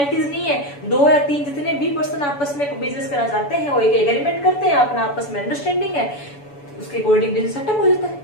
नहीं है। 2 या 3 जितने भी पर्सन आपस में बिजनेस करना चाहते हैं वो एक एग्रीमेंट करते हैं, अपना आपस में अंडरस्टैंडिंग है, उसके अकॉर्डिंग बिजनेस सेटअप हो जाता है।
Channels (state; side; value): late; right; 7.0 ms